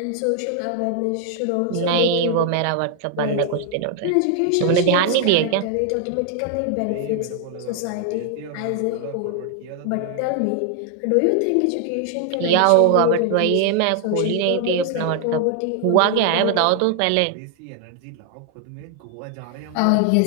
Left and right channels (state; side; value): different; both; correlation 0.00